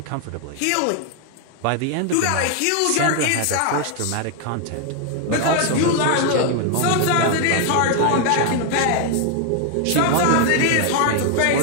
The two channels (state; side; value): different; both; correlation 0.00